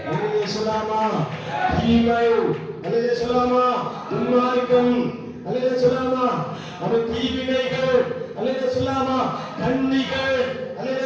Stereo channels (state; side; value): identical; both; correlation 1.00